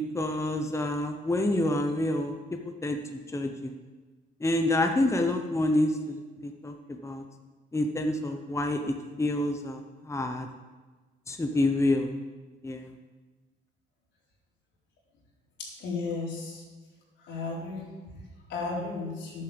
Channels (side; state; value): both; normal; correlation 0.74